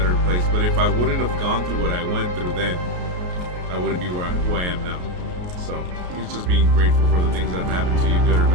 place. But if I wouldn't have gone through what I went through then, I wouldn't be who I am now. So it's just being grateful for the things that have happened to you, good or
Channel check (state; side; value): late; left; 33 ms